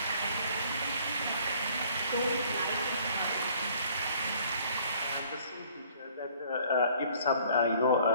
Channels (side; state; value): both; inverted; correlation -0.57